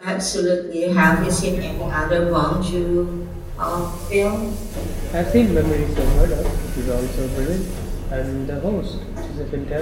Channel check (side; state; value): both; identical; correlation 1.00